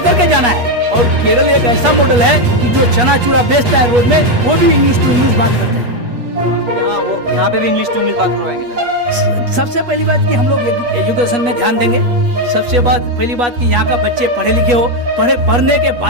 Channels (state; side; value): late; left; 8.3 ms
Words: के जाना है और केरल एक ऐसा मॉडल है कि जो चना चूरा बेचता है रोड में वो भी इंग्लिश टू इंग्लिश बात करते हैं। यहाँ पे भी इंग्लिश टू इंग्लिश बात करवाएंगे। सबसे पहली बात कि हम लोग एजुकेशन में ध्यान देंगे। सबसे पहली बात कि यहाँ का बच्चे पढ़े लिखे हो, पढ़ने के